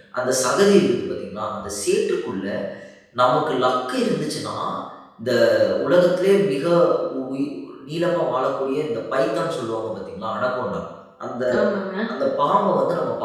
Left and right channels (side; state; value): both; identical; correlation 1.00